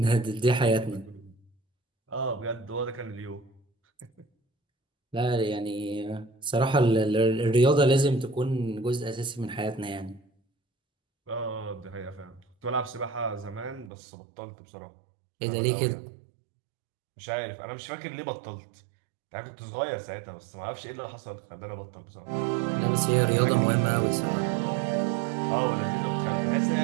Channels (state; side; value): drops out; left; at 13.9 s